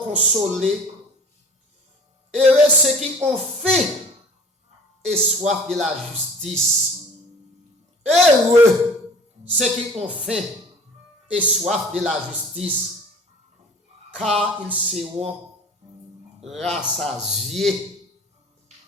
consolés. Heureux ceux qui ont faim et soif de la justice. Heureux ceux qui ont faim et soif de la justice, car ils seront rassasiés.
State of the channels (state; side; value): normal; both; correlation 0.45